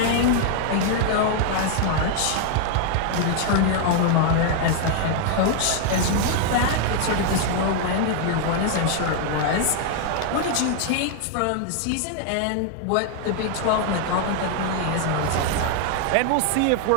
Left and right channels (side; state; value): both; different; correlation 0.00